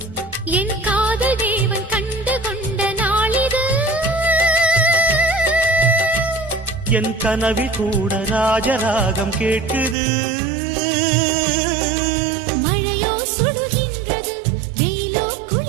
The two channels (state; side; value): drops out; left; at 10.0 s